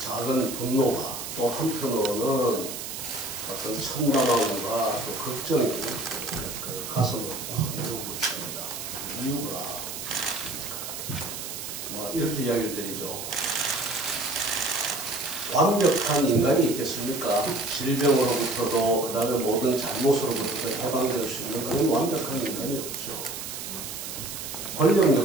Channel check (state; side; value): noise; right; hiss, 7 dB below the sound